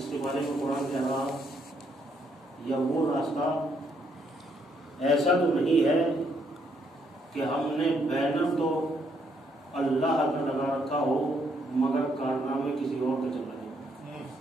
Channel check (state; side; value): normal; both; correlation 0.72